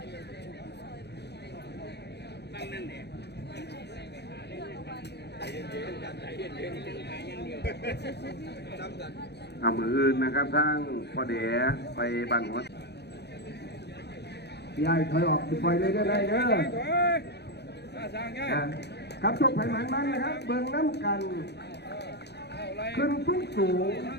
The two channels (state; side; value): late; right; 0.49 ms